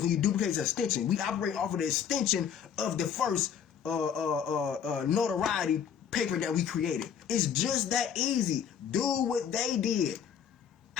When you duplicate, it's an extension. We operate off of the extension of the first notoriety paper that we created. It's just that easy. Do what they did.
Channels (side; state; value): right; quieter; 8.0 dB